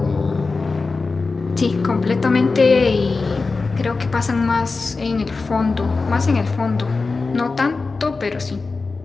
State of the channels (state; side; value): quieter; right; 4.0 dB